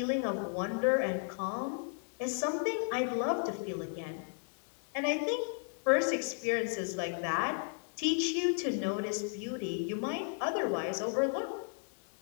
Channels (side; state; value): right; silent; 55 dB below the other